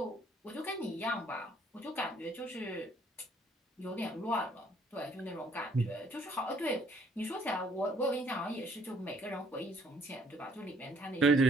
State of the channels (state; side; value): normal; both; correlation 0.63